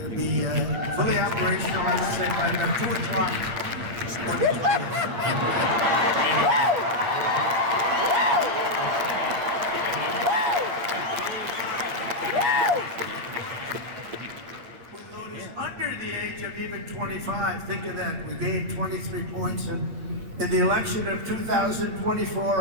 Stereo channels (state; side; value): late; left; 8.7 ms